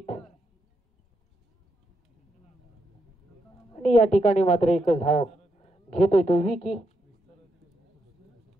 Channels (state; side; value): normal; both; correlation 0.81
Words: आणि या ठिकाणी मात्र एकच धाव घेतोय तो विकी.